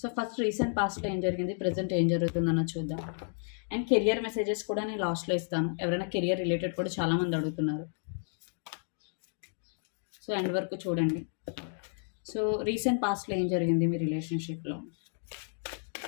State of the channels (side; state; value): right; silent; digital silence